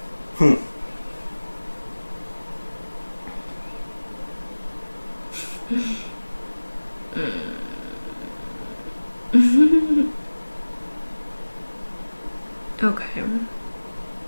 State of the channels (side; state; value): both; inverted; correlation -1.00